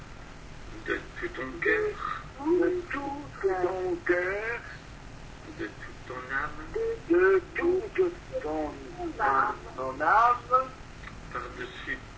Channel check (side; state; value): both; identical; correlation 1.00